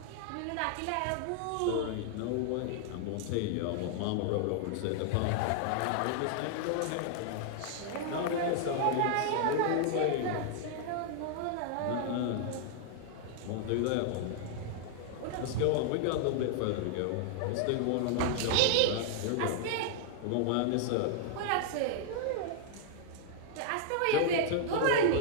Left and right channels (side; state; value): both; different; correlation -0.01